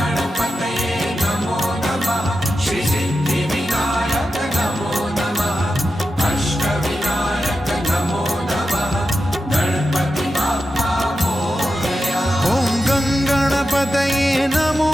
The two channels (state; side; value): normal; both; correlation 0.90